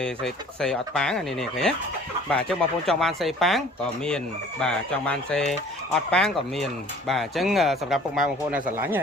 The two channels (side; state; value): both; normal; correlation 0.51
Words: េអត់ប៉ាងនេះឃើញបាទអញ្ចឹងបងប្អូនចង់បានសេប៉ាងក៏មានបាទចង់បានសេអត់ប៉ាងក៏មានបាទអញ្ចឹងសម្រាប់ពុកម៉ែបងប្អូនដែលស្រឡាញ់ហ